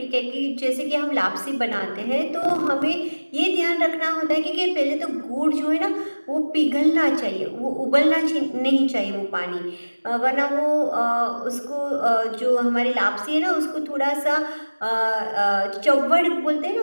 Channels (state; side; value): inverted; both; correlation -1.00